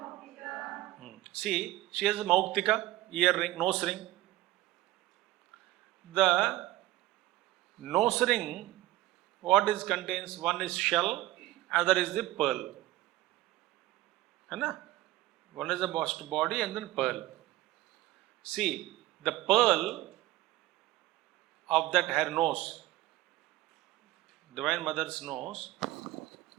See, she has a Mauktika, earring, nose ring. The nose ring, what is contains? One is shell, other is the pearl. One is the body and then pearl. See, the pearl of that her nose, Divine Mother's nose,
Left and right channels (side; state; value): left; quieter; 16.6 dB